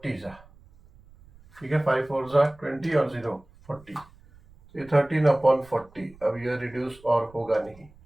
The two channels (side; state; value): right; noise; rumble, 26 dB below the sound